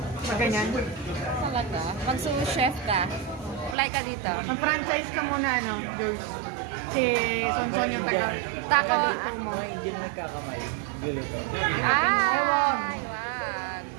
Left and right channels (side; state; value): left; drops out; at 3.8 s